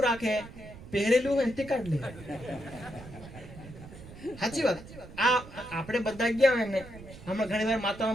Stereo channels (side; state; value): right; noise; rumble, 16 dB below the sound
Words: રાખે? પહેરેલું હોય તે કાઢ લે. સાચી વાત. આ આપણે બધા ગયા હોય ને, હમણાં ઘણી વાર